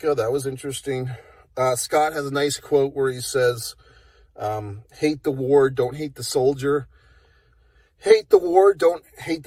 That was interesting. Scott has a nice quote where he says, hate the war, don't hate the soldier. Hate the war, don't hate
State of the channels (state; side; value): identical; both; correlation 1.00